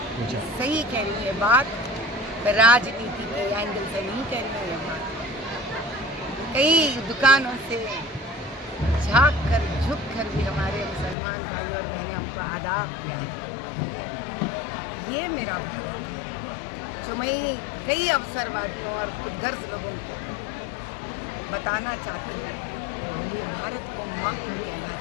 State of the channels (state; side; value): drops out; right; at 11.2 s